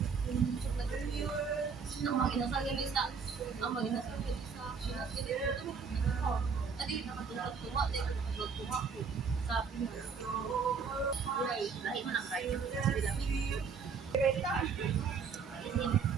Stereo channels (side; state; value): left; quieter; 5.7 dB